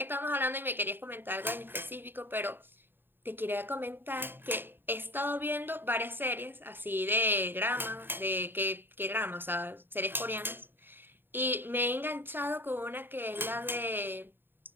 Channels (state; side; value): late; left; 0.098 ms